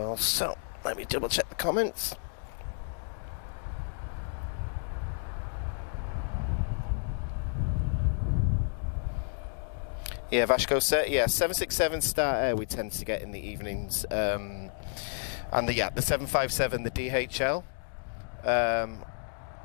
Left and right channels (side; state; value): right; silent; digital silence